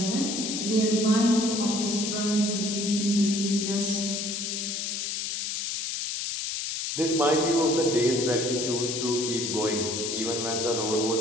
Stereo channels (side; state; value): left; noise; hiss, 3 dB below the sound